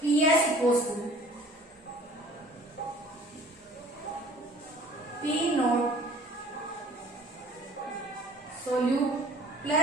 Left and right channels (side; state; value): both; normal; correlation 0.50